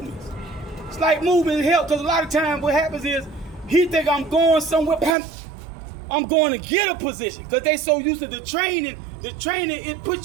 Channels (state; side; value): drops out; left; at 5.2 s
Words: help, because a lot of times what happens is he think I'm going somewhere, I'm going to get a position, because they so used to the training, it